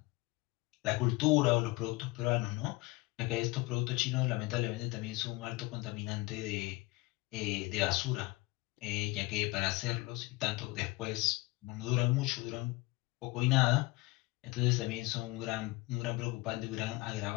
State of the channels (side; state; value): right; quieter; 21.9 dB